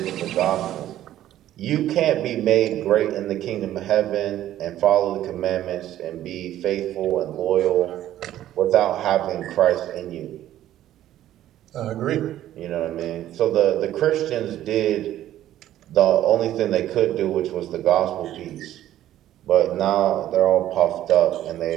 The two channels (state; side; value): quieter; left; 12.8 dB